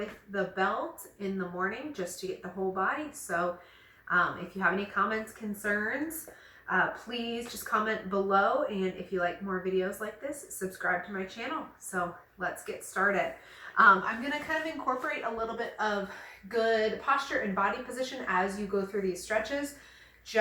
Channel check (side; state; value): both; identical; correlation 1.00